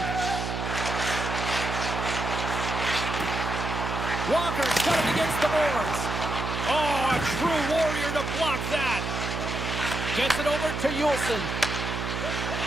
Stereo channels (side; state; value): right; noise; hum, 3 dB below the sound